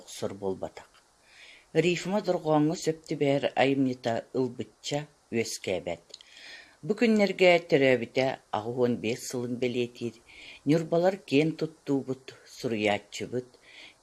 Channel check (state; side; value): identical; both; correlation 1.00